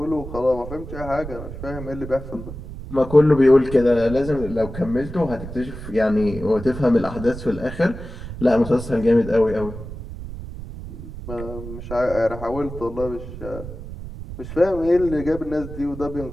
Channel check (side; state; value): right; noise; rumble, 11 dB below the sound